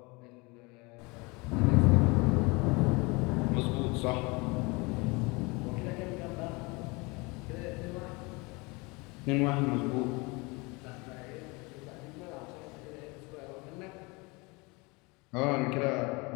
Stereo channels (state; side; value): quieter; right; 26.8 dB